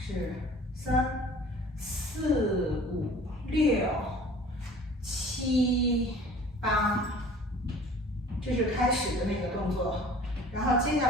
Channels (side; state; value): both; normal; correlation 0.47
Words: 3、4、5、6、7、8，这是开始的那个动作。然后接